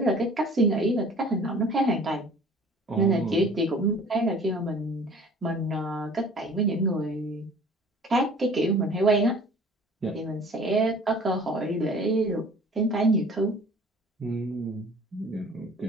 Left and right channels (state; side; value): normal; both; correlation 0.49